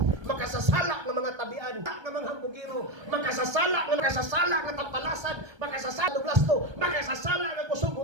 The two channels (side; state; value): left; late; 1.3 ms